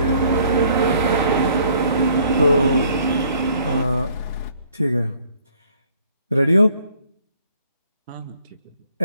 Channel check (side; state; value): both; inverted; correlation -0.60